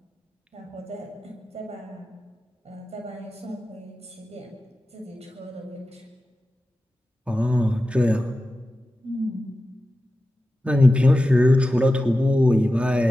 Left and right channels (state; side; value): normal; both; correlation 0.93